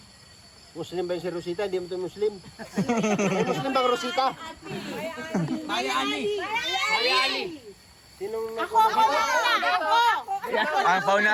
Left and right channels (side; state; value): both; identical; correlation 1.00